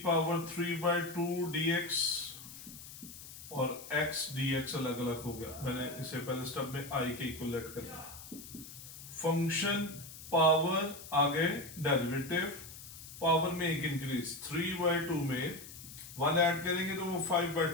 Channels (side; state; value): left; noise; hiss, 14 dB below the sound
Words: पावर 3/2 dx और x dx अलग अलग हो गया। मैंने इसे पहले स्टेप में i के इक्वल लेट कर दिया। फंक्शन पावर आगे डेरिवेटिव, पावर में एक इंक्रीज, 3/2 में 1 ऐड करेंगे तो वो